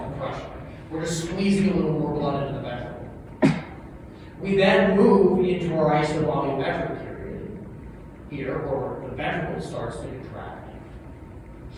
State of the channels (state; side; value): identical; both; correlation 1.00